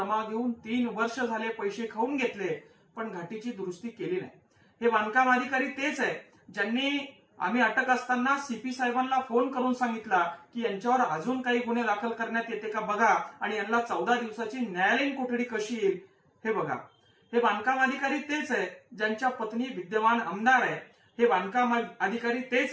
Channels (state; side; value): identical; both; correlation 1.00